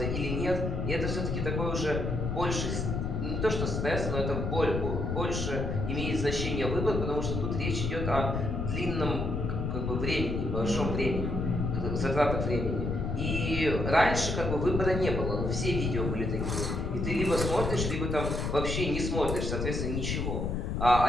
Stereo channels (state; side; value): noise; left; rumble, 1 dB below the sound